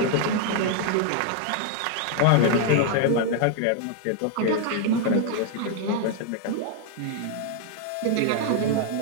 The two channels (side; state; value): both; different; correlation 0.00